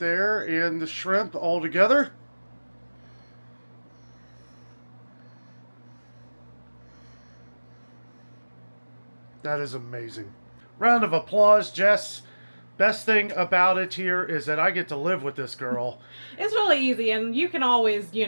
and the shrimp all together. That is amazing. Round of applause, Jess. Best thing about it here is that I get to live with this girl. It's really easy, and you can always,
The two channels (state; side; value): inverted; both; correlation -1.00